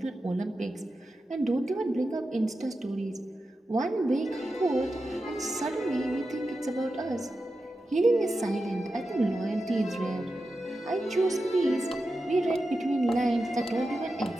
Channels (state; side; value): normal; both; correlation 0.91